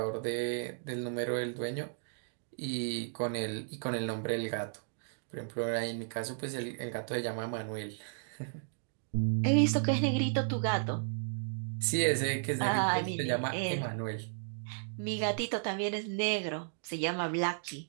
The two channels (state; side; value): silent; left; digital silence